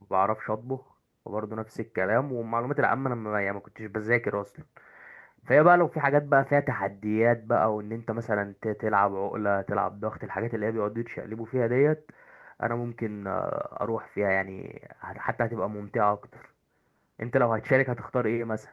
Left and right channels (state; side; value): identical; both; correlation 1.00